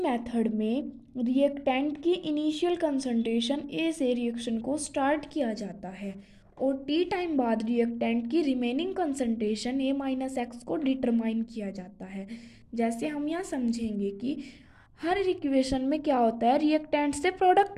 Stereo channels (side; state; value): both; identical; correlation 1.00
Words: में रिएक्टेंट की इनिशियल कंसंट्रेशन ए से रिएक्शन को स्टार्ट किया जाता है और टी टाइम बाद रिएक्टेंट की रिमेनिंग कंसंट्रेशन ए माइनस एक्स को डिटरमाइन किया जाता है। जैसे हम यहाँ समझेंगे कि हर इक्वेशन में क्या होता है, रिएक्टेंट से